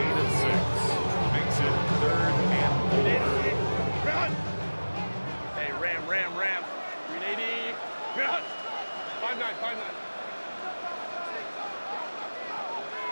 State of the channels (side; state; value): both; inverted; correlation -1.00